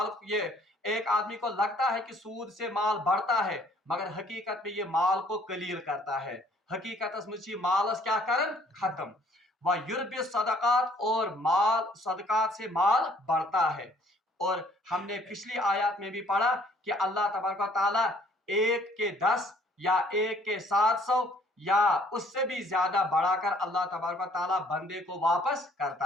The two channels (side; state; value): both; normal; correlation 0.60